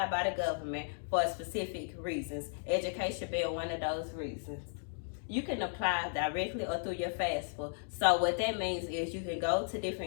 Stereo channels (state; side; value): silent; right; digital silence